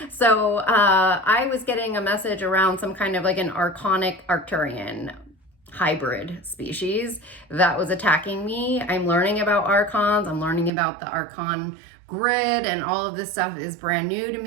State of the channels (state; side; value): drops out; left; at 10.7 s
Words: So I was getting a message around some kind of like an archonic Arcturian hybrid species that was attacking me. I'm learning about archons. I'm learning about the archon grid, and all of this stuff is brand new to